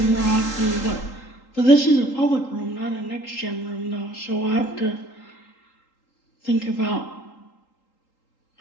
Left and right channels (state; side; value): late; right; 3.8 ms